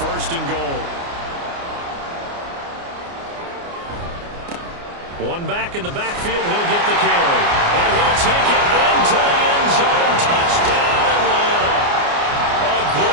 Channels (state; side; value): late; left; 29 ms